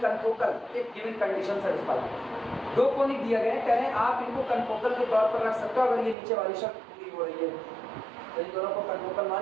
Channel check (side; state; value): left; drops out; at 6.2 s